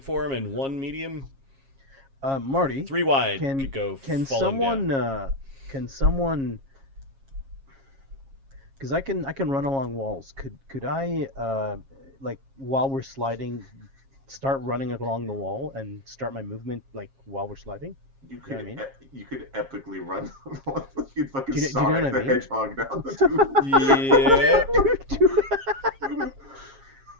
form and 1 medium. Marty, 3 wide can could go can falling someone down. can someone? Because I can run along walls. Could I like while we're sliding, start running along the wall and start my movement like while we're sliding? You know could what I mean? you could epically run. You'd fucking Do you know Sonic what I the mean? Hedgehog down the tube. Yeah.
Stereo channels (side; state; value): left; late; 7.4 ms